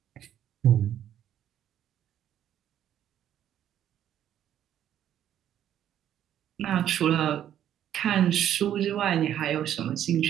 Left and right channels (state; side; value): quieter; left; 10.8 dB